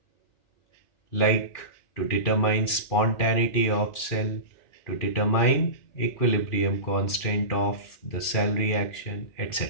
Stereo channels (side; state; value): right; late; 2.5 ms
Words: like to determine spontaneity of cell, to determine equilibrium constant of the cell reaction,